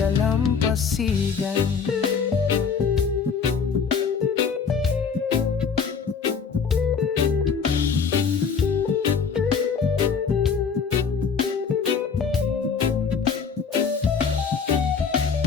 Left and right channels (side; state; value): right; quieter; 6.0 dB